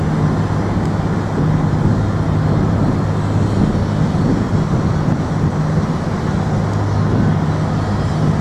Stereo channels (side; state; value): both; identical; correlation 1.00